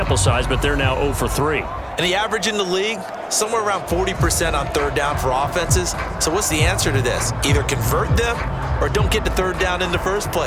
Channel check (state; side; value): identical; both; correlation 1.00